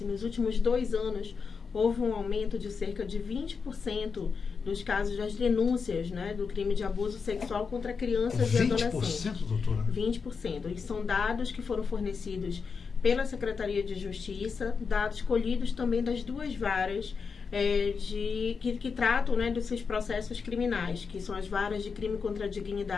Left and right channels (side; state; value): right; quieter; 5.4 dB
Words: Nos últimos 2 anos, houve um aumento de cerca de 20% dos casos das denúncias do crime de abuso sexual contra crianças e adolescentes. 20%, doutora? 20%. E são dados que foram fornecidos pela Secretaria de Justiça, dados colhidos também das 2 varas que tratam desses processos criminais, que são as varas de crime contra a